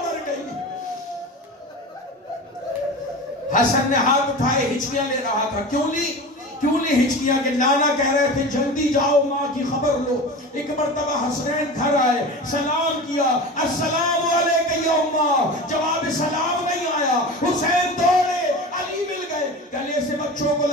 مر گئی۔ حسن نے ہاتھ اٹھائے ہچکیاں لے رہا تھا، کیوں لی ہچکیاں، کہ نانا کہہ رہے تھے جلدی جاؤ ماں کی خبر لو۔ ایک مرتبہ حسنین گھر آئے، سلام کیا، السلام علیکم یا اماں، جواب سلام نہیں آیا، حسین دوڑے، علی مل گئے، گلے سے بچوں کو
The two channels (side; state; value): both; normal; correlation 0.31